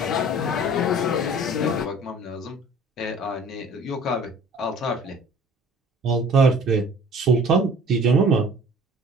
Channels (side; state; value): both; normal; correlation 0.49